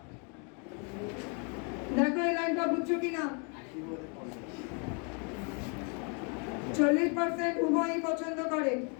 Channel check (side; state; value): right; quieter; 36.2 dB